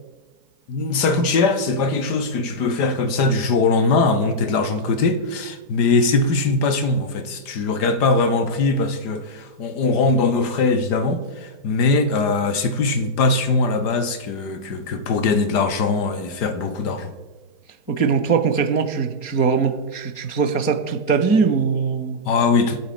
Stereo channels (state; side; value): late; right; 5.0 ms